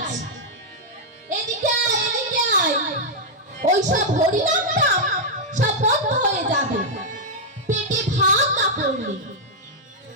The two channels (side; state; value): both; normal; correlation -0.03